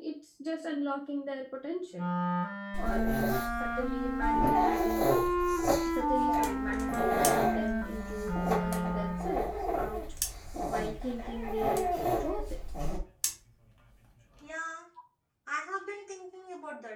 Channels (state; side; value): identical; both; correlation 1.00